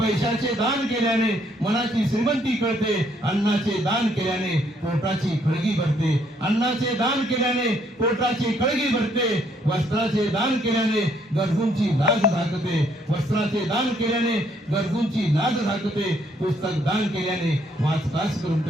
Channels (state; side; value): normal; both; correlation 0.69